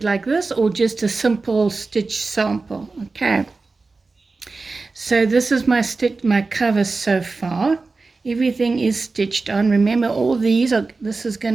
like this or just a simple stitch sample. Okay. So this is my cover so far. Everything is stitched on. Remember, this is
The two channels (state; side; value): quieter; left; 3.8 dB